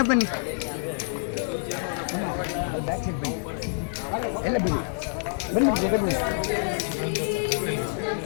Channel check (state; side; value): silent; right; 60 dB below the other